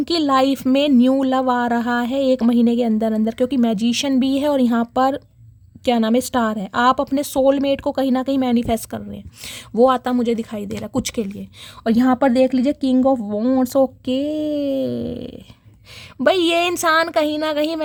लाइफ में न्यू लव आ रहा है 1 महीने के अंदर अंदर, क्योंकि मैजिशियन भी है और यहाँ पर क्या नाम है, स्टार है। आप अपने सोलमेट को कहीं ना कहीं मैनिफेस्ट कर रहे हैं, वो आता मुझे दिखाई दे रहा है कुछ के लिए। और यहाँ पर देख लीजिए किंग ऑफ वॉन्ड्स ओके। भाई ये इंसान कहीं ना कहीं,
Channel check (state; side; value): identical; both; correlation 1.00